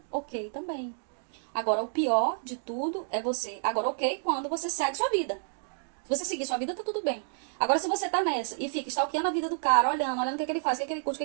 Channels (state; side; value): silent; left; digital silence